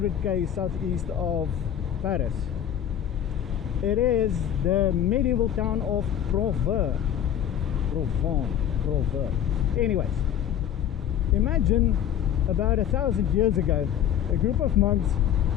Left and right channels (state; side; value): quieter; right; 10.3 dB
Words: southeast of Paris. It is the medieval town of Provins. Anyways, imagine about 1,000 years ago, a group of monks